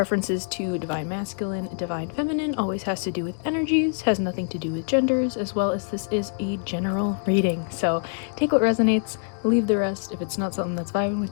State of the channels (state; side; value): silent; right; digital silence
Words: to divine masculine, divine feminine always has to do with energies, has nothing to do with genders, as well as this is a general reading. So take what resonates, leave the rest. If it's not something that's vibing